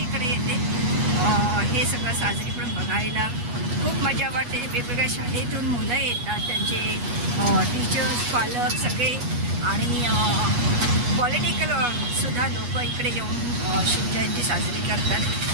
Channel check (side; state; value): left; late; 8.3 ms